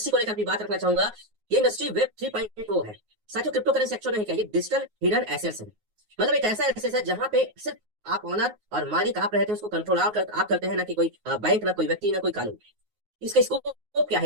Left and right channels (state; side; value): late; left; 9.5 ms